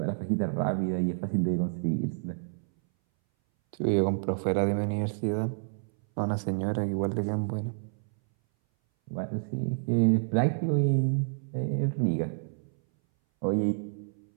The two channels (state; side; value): silent; left; 59 dB below the other